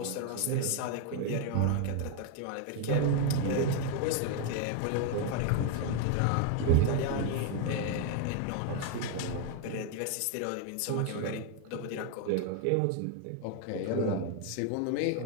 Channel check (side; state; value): both; different; correlation 0.01